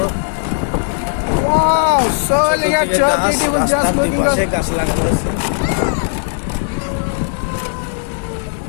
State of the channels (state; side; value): silent; right; digital silence